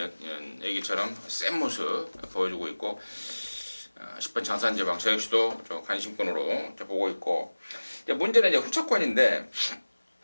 얘기처럼 센 모습 보여주고 있고 10번 장산제왕 저 역시도 저 관심권으로 보고 있고 문제는 이제 후차권인데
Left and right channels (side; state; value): both; inverted; correlation -1.00